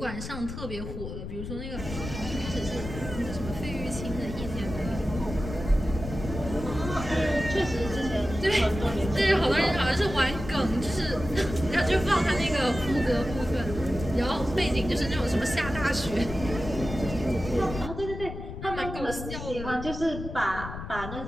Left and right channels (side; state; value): left; noise; rumble, 8 dB below the sound